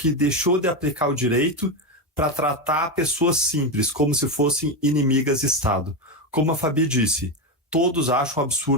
deixou de aplicar o direito para tratar pessoas simples como se fossem inimigas de Estado. Como a Fabi disse, todos acham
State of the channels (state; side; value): normal; both; correlation 0.12